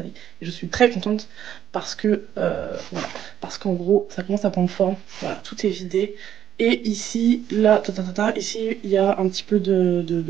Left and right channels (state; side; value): quieter; left; 10.2 dB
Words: Et je suis très contente parce que, voilà, parce qu'en gros, ça commence à prendre forme. Voilà, tout est vidé. Et ici, là, ici, il y a un petit peu